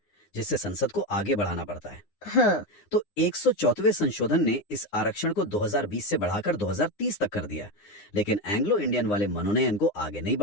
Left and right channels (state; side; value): late; right; 9.8 ms